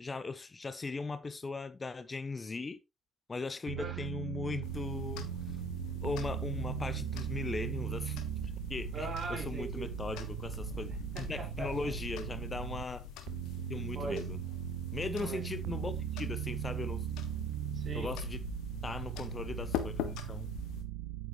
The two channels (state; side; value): normal; both; correlation 0.50